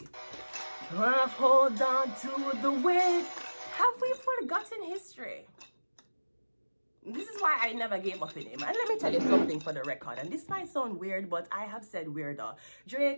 Hold on to the weight. Have we forgotten history? This is why I never gave up in him. And let me tell you something for the record. And this might sound weird, but I have said weirder.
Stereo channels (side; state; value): both; inverted; correlation -1.00